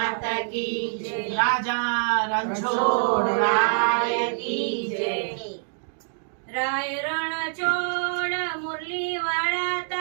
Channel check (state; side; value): silent; left; digital silence